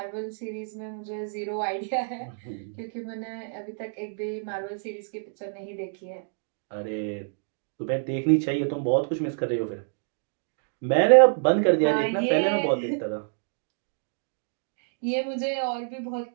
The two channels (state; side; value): silent; left; digital silence